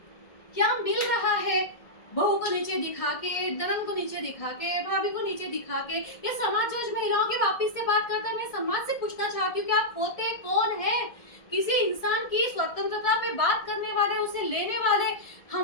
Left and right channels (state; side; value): late; right; 1.6 ms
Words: क्या मिल रहा है? बहू को नीचे दिखा के, ननद को नीचे दिखा के, भाभी को नीचे दिखा के, ये समाज आज महिलाओं के वापिस से बात करता है। मैं समाज से पूछना चाहती हूँ कि आप होते कौन है? किसी इंसान की स्वतंत्रता पे बात करने वाले, उसे लेने वाले,